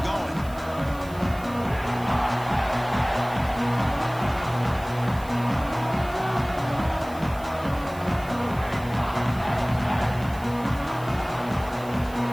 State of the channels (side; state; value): right; noise; hiss, 21 dB below the sound